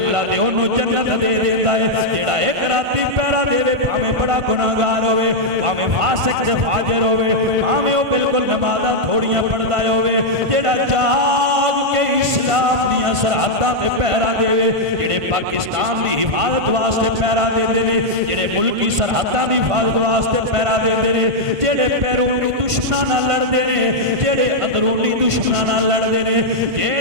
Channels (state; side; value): late; left; 1.5 ms